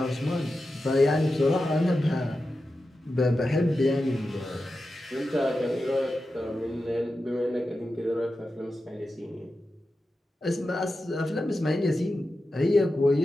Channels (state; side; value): normal; both; correlation 0.91